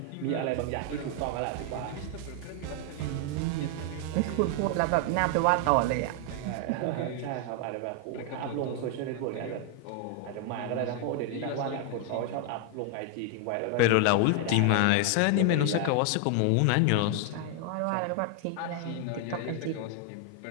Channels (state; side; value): different; both; correlation 0.00